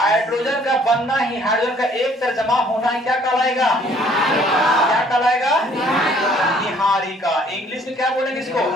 का बनना ही, हाइड्रोजन का एक तरह जमा होना ही क्या कहलाएगा, क्या कहलाएगा, निहारिका। इंग्लिश में क्या बोलेंगे इसको,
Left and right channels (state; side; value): normal; both; correlation 0.59